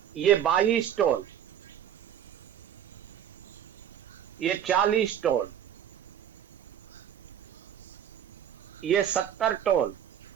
ये 22 टन, ये 40 टन, ये 70 टन,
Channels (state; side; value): quieter; left; 9.7 dB